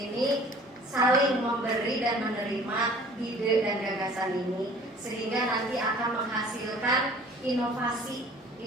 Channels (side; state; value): both; normal; correlation 0.50